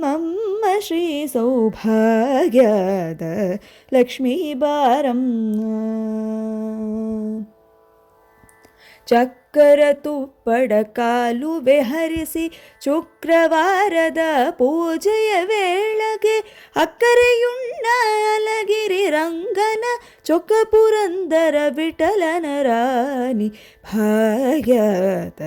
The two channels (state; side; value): identical; both; correlation 1.00